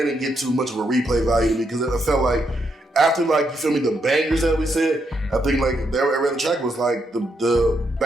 didn't get too much of a replay value to me because it felt like after, like, you feel me, the bangers that we said, I think like every other track was like the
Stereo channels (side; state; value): both; normal; correlation 0.79